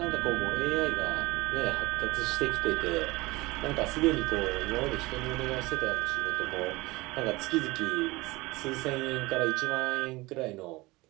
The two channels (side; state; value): left; quieter; 21.8 dB